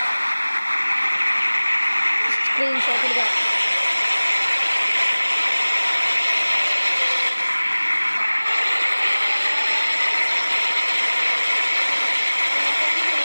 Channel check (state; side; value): inverted; both; correlation -1.00